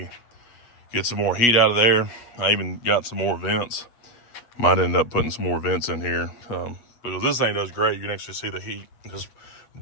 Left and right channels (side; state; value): right; late; 8.4 ms